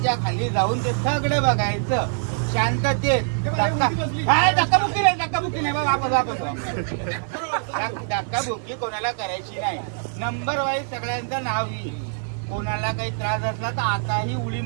खाली जाऊन ते सगळं बघायचं शांततेत. धक्काबुक्की नाही बाबा. धक्काबुक्की कोणाला करायची नाही. नंबर वाईज सगळ्यांचं नाव येईल. कोणाला काही त्रास असला तर आताही उडी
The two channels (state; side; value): silent; left; digital silence